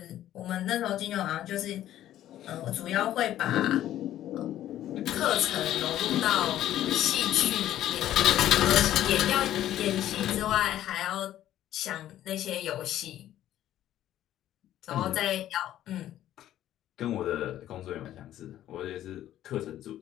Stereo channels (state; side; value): quieter; right; 12.6 dB